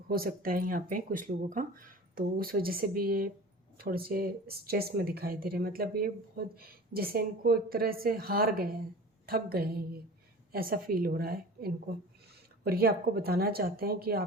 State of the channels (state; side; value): normal; both; correlation 0.39